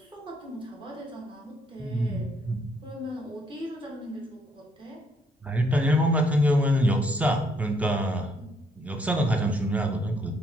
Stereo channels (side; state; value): both; normal; correlation 0.70